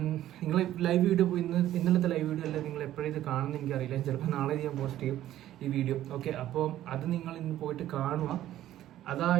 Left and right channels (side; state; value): left; quieter; 13.1 dB